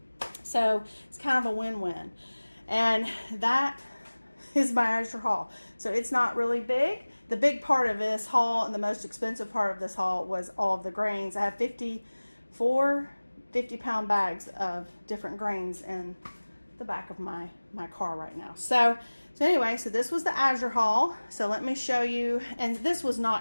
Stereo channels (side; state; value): both; inverted; correlation -1.00